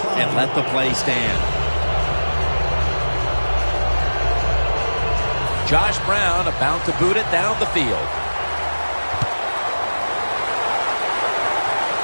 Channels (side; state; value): both; inverted; correlation -1.00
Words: and let the play stand. Josh Brown about to boot it down the field.